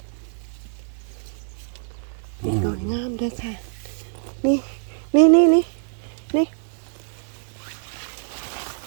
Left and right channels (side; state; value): left; silent; digital silence